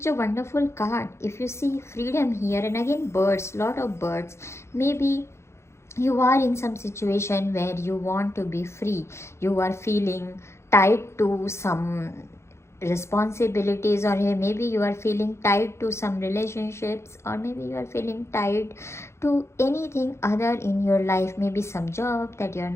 a wonderful card. If you see freedom here, and again birds, lot of birds, maybe you are in some situation where you want to be free. You are feeling tied to some responsibilities, or maybe you are feeling tied to some relationships, or maybe you are feeling tied to anything other in your life, maybe some job that you are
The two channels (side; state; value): right; late; 0.13 ms